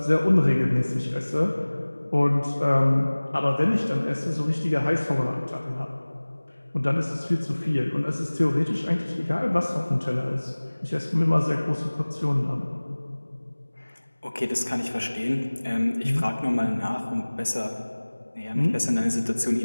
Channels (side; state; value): both; inverted; correlation -1.00